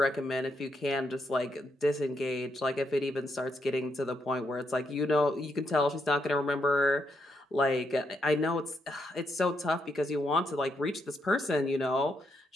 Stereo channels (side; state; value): both; normal; correlation 0.78